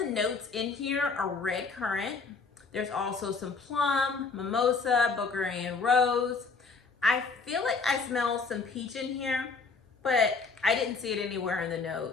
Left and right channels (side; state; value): right; quieter; 4.5 dB